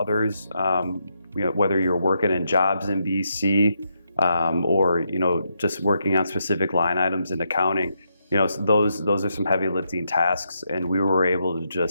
whether you're working in jobs in BC or just working on specific line items in accounting, those are some heavy lifting tasks. And we were able to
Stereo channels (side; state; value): both; inverted; correlation -0.81